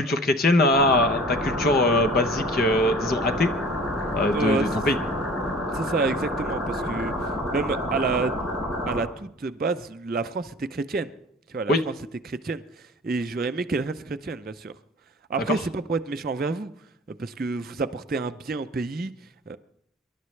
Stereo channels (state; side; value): normal; both; correlation 0.44